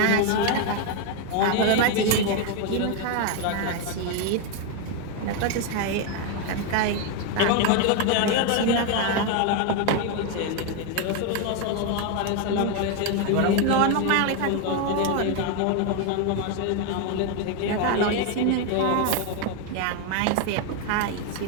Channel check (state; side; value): different; both; correlation 0.01